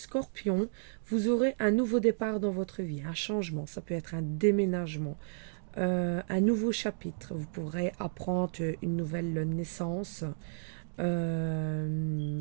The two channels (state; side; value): silent; left; digital silence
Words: vous aurez un nouveau départ dans votre vie, un changement. Ça peut être un déménagement, un nouveau chapitre. Vous pourrez apprendre une nouvelle naissance,